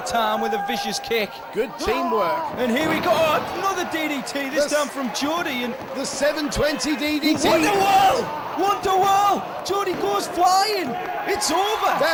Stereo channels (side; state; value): both; identical; correlation 1.00